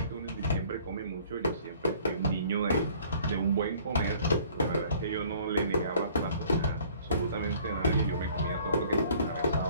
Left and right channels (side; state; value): both; inverted; correlation -0.54